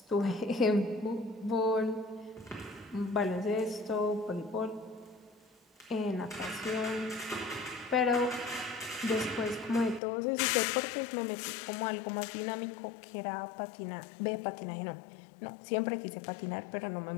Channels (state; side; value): drops out; right; at 10.0 s